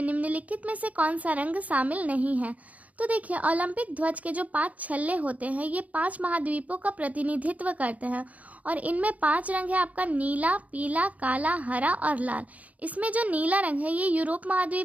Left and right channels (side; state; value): left; late; 0.071 ms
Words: निम्नलिखित में से कौन सा रंग शामिल नहीं है। तो देखिए, ओलंपिक ध्वज के जो 5 छल्ले होते हैं ये 5 महाद्वीपों का प्रतिनिधित्व करते हैं और इनमें 5 रंग है आपका नीला, पीला, काला, हरा और लाल। इसमें जो नीला रंग है ये यूरोप